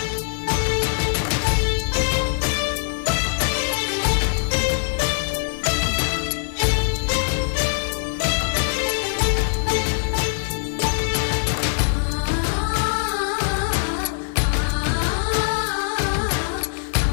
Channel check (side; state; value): right; silent; digital silence